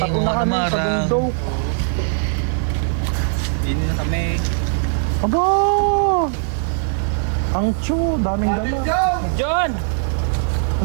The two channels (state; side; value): silent; left; digital silence